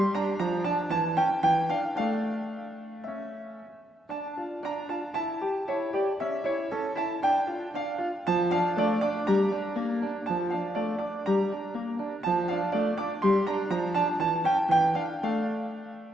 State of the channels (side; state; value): both; normal; correlation 0.79